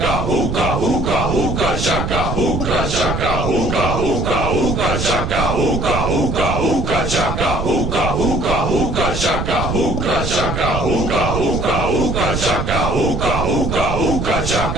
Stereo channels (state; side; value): noise; right; rumble, 3 dB below the sound